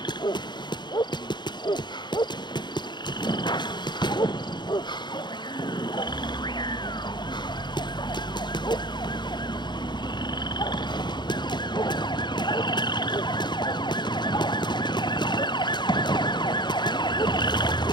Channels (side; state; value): right; late; 0.21 ms